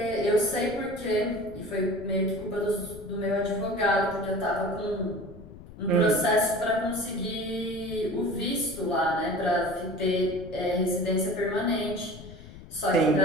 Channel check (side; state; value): left; noise; rumble, 16 dB below the sound